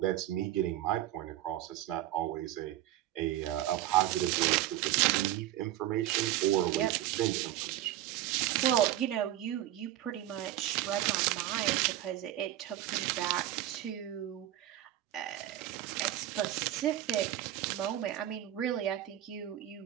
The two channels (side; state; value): left; quieter; 13.5 dB